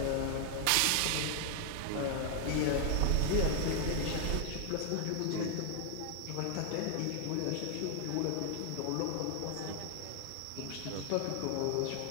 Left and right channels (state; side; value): different; both; correlation 0.00